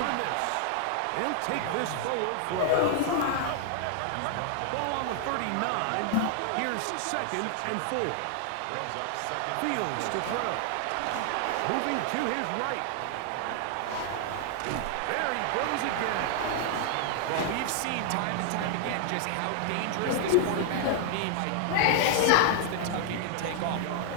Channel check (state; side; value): different; both; correlation 0.00